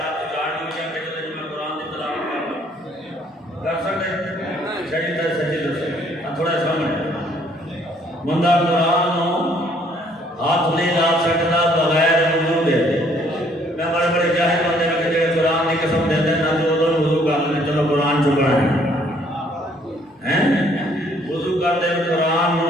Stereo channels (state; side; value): normal; both; correlation 0.63